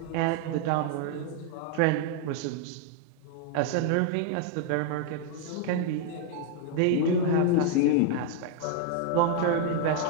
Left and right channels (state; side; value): different; both; correlation 0.00